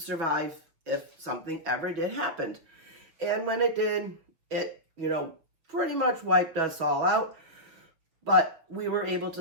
if something ever did happen. And when it did, it, pretty much wiped us all out. But we were able to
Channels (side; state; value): left; late; 6.1 ms